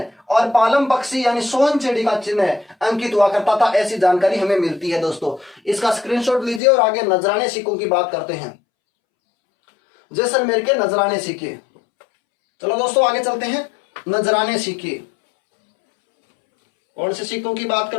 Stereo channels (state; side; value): drops out; right; at 6.6 s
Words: और पालम पक्षी यानी सोहन चिड़ी का चिन्ह अंकित हुआ करता था। ऐसी जानकारी हमें मिलती है दोस्तों। इसका स्क्रीनशॉट लीजिए और आगे नजराने सिक्कों की बात करते हैं। जैसलमेर के नजराने सिक्के। चलो दोस्तों आगे चलते हैं। नजराने सिक्के कौन से सिक्कों की बात